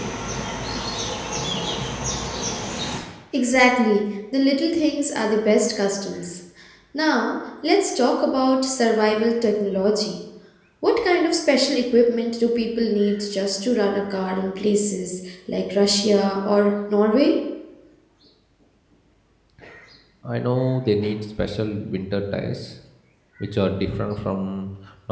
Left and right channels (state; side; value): identical; both; correlation 1.00